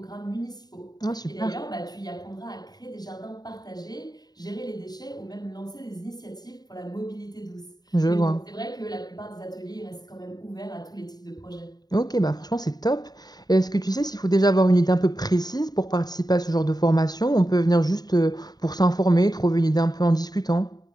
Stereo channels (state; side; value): late; right; 0.19 ms